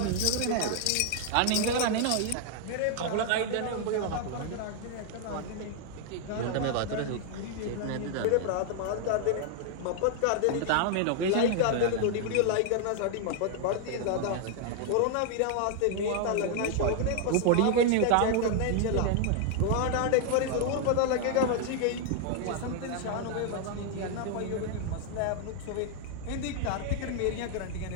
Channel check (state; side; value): different; both; correlation 0.00